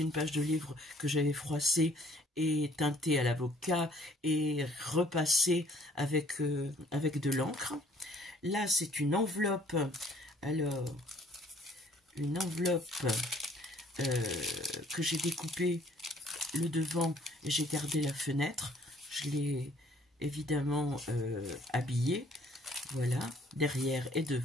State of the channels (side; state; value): both; normal; correlation 0.59